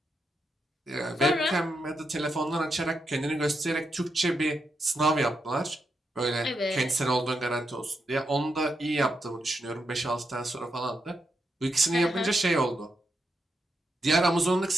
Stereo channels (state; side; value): normal; both; correlation 0.84